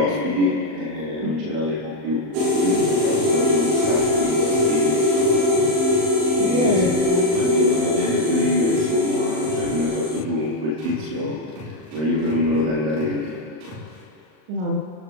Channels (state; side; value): late; left; 39 ms